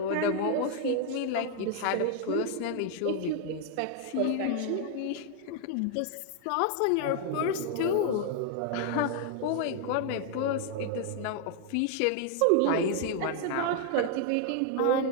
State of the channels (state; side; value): different; both; correlation 0.00